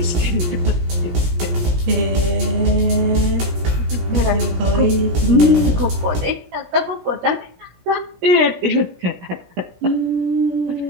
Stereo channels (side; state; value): left; late; 17 ms